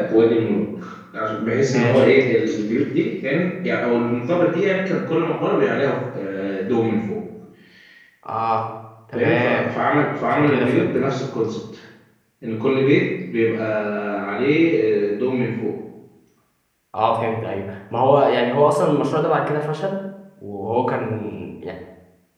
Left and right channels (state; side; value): identical; both; correlation 1.00